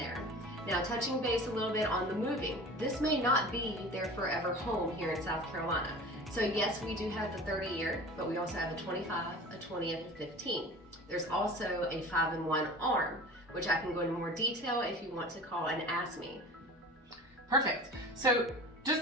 Now, touching base a little bit on the moving, this may not be their forever home here in South Carolina. So yes, we do have the 30-year, but we also have a 25, a 20, and a 15. There's also a 5-in-1 arm, which I can go into more detail if you want to call and ask me. Perfect. So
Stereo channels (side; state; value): both; normal; correlation 0.38